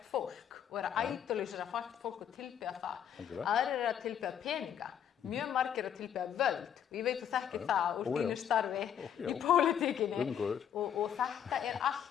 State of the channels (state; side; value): quieter; right; 9.1 dB